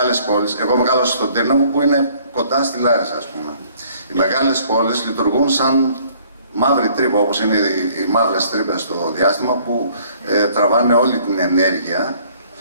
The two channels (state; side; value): inverted; both; correlation -0.59